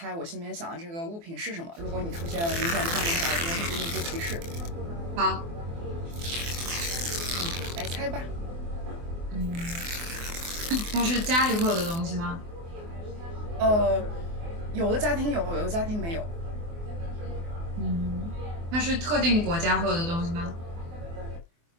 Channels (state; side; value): late; left; 24 ms